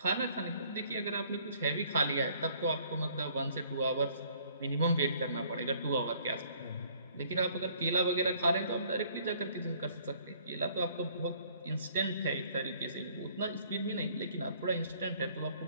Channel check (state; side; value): inverted; both; correlation -0.60